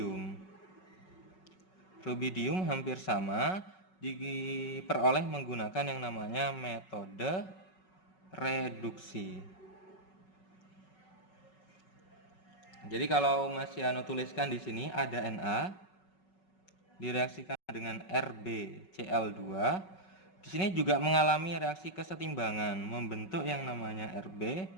Rubidium hampir sama, diperoleh menggunakan yang namanya metode reduksi. Jadi kalau Mas Yano tuliskan di sini ada Na direaksikan dengan RbCl2. Di sini juga mengalami reaksi kesetimbangan membentuk yang namanya Rb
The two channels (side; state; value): right; late; 5.4 ms